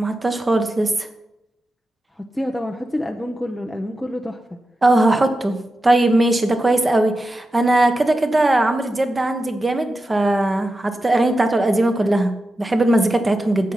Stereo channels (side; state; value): both; normal; correlation 0.91